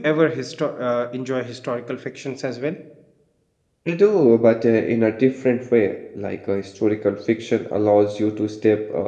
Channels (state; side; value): identical; both; correlation 1.00